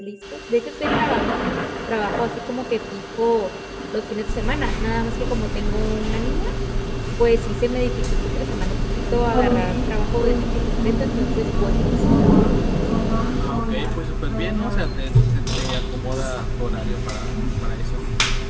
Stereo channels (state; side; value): identical; both; correlation 1.00